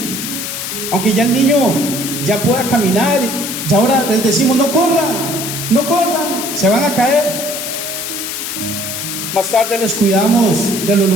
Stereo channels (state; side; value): noise; left; hiss, 5 dB below the sound